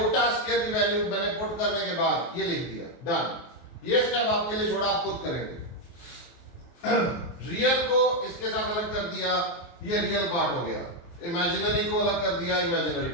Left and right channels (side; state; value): right; late; 23 ms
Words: स्क्वायर की वैल्यू मैंने पुट करने के बाद ये लिख दिया, डन। ये स्टेप आपके लिए छोड़ा, आप खुद करेंगे। रियल को इसके साथ अलग कर दिया, ये रियल पार्ट हो गया, इमेजिनरी को अलग कर दिया, इमेजिनरी